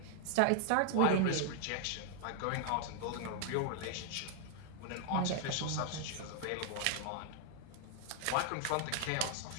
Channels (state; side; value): different; both; correlation 0.00